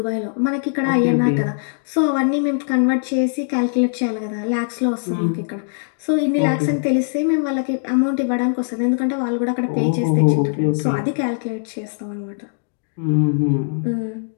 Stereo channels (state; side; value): silent; right; digital silence